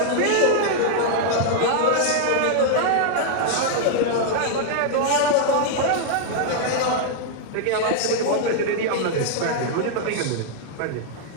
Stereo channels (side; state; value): both; different; correlation -0.01